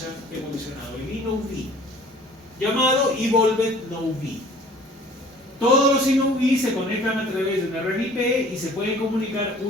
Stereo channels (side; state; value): both; normal; correlation 0.51